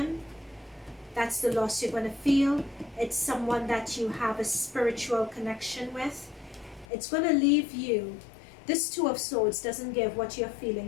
That's the loss you're going to feel. It's someone that you have a spiritual connection with. It's going to leave you. This Two of Swords doesn't give what you're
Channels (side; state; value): right; drops out; at 6.9 s